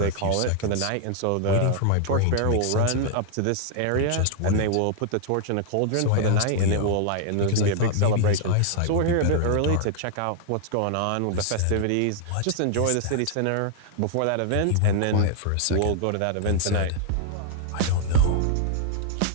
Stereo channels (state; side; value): different; both; correlation -0.01